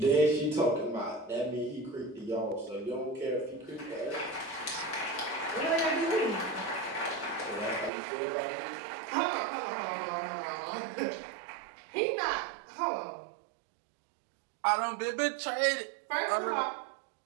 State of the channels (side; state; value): left; drops out; at 7.9 s